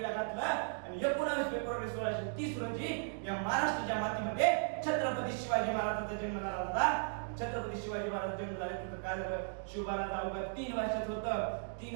घातलं. आणि 19 फेब्रुवारी 1630 रोजी या महाराष्ट्राच्या मातीमध्ये छत्रपती शिवाजी महाराजांचा जन्म झाला होता. छत्रपती शिवाजी महाराज जन्म झाल्यानंतर काय झालं, शिवबाला अवघ्या 3 वर्षाचं होतं.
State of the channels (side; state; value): left; silent; digital silence